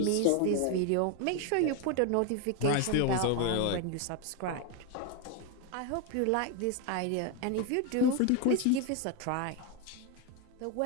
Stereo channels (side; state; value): both; different; correlation 0.02